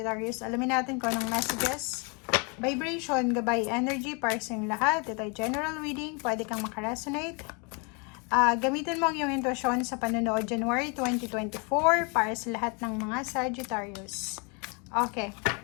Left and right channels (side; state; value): right; quieter; 33.3 dB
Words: Alamin natin kung anong messages, vibration, gabay, energy, para sa inyong lahat. Ito ay general reading, pwede kang makaresonate. Gamitin mo ang iyong intuition sa panonood January 2024 para sa lahat ng mga Sagittarius. Okay.